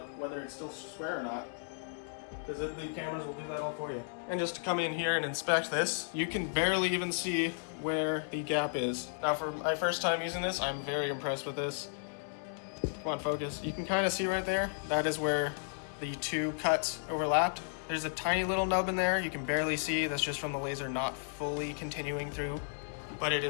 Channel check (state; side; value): silent; right; digital silence